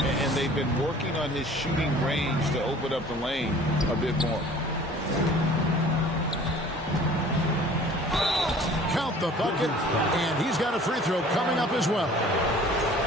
they've been working on his shooting range to open up the lane a bit more. Count the bucket, and he's got a free throw coming up as well.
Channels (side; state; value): both; normal; correlation 0.49